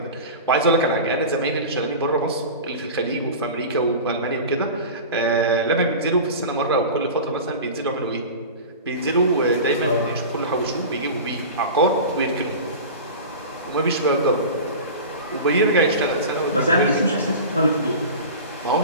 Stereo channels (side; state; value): both; inverted; correlation -0.31